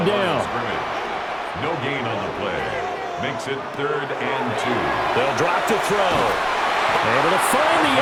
down. No gain on the play. Makes it 3rd and 2. They'll drop to throw. Able to find the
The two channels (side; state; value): both; identical; correlation 1.00